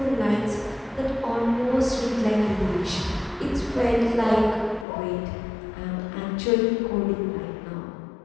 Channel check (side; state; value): right; drops out; at 4.9 s